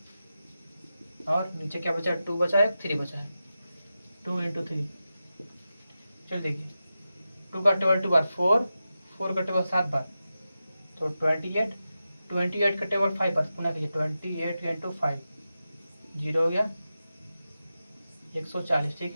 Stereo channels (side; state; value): both; inverted; correlation -0.92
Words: और नीचे क्या बचा है, 2 बचा है, 3 बचा है, 2 × 3। चलिए देखिए 2 का टेबल 2 बार 4, 4 का टेबल 7 बार, तो 28, 28 का टेबल 5 बार, पुनः कहिए 28 × 5, 0 हो गया 140।